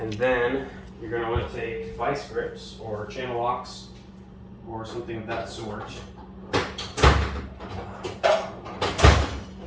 then you're going to want to take vice grips or channel locks or something of that sort.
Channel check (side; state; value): both; identical; correlation 1.00